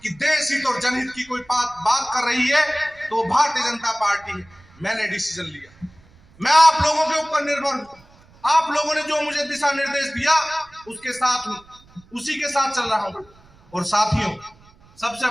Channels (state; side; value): noise; right; rumble, 28 dB below the sound